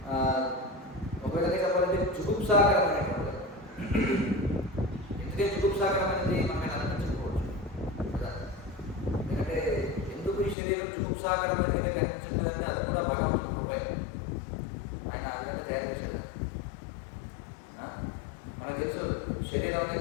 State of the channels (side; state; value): right; drops out; at 10.6 s